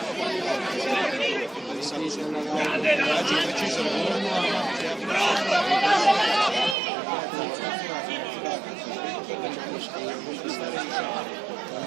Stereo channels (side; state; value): left; drops out; at 6.8 s